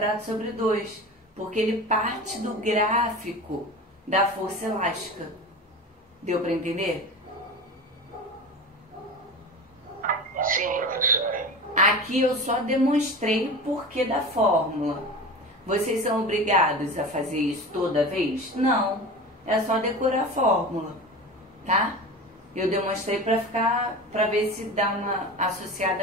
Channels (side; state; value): both; normal; correlation 0.31